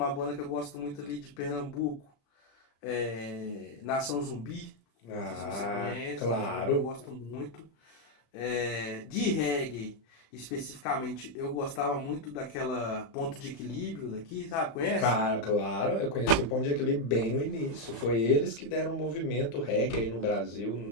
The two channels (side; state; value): right; late; 35 ms